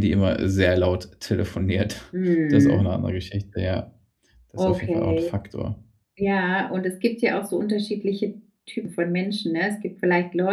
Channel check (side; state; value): both; identical; correlation 1.00